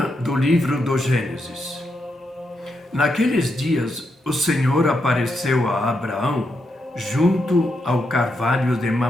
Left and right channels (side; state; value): both; normal; correlation 0.82